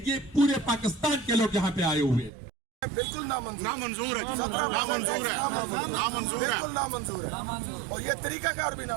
یہ پورے پاکستان کے لوگ یہاں پہ آئے ہوئے ہیں. بالکل نامنظور ہے, بالکل نامنظور ہے, اور یہ طریقہ کار بھی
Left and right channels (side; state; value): left; drops out; at 2.3 s